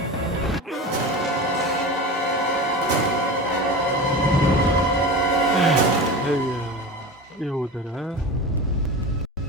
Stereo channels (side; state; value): both; normal; correlation 0.29